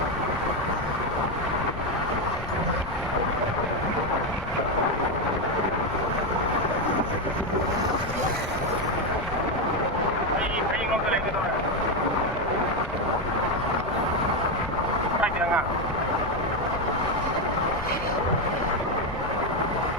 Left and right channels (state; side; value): noise; left; rumble, 9 dB below the sound